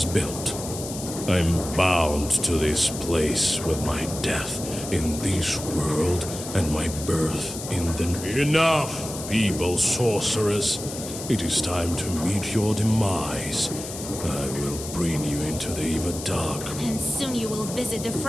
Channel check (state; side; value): noise; left; hiss, 10 dB below the sound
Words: built. I'm bound to this place with my death in this world and my birth in the... Enough, feeble sorceress. It is time to meet your demise. I will bring you into the Dark. And soon you will visit the